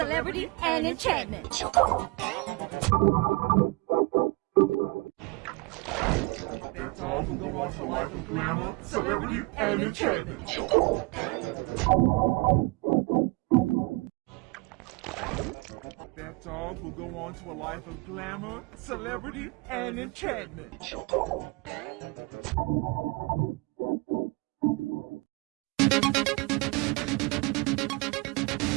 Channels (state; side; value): quieter; left; 26.6 dB